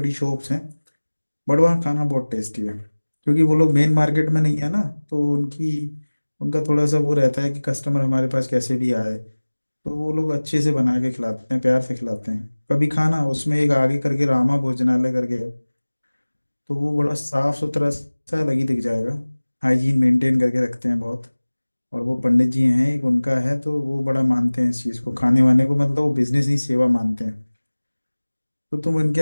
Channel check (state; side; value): inverted; both; correlation -1.00